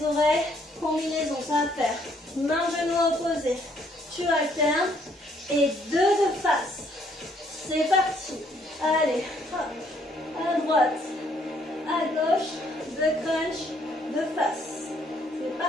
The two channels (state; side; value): normal; both; correlation 0.67